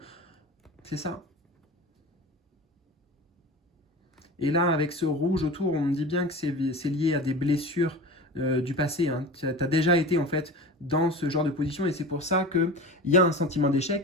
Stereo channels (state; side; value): normal; both; correlation 0.32